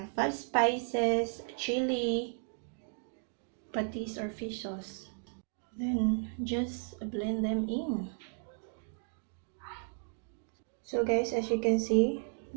5 spices, chili, patis or fish sauce. Then just blend them in. So guys, as you can see,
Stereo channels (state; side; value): silent; left; 55 dB below the other